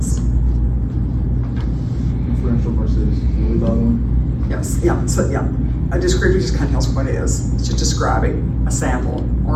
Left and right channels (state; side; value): identical; both; correlation 1.00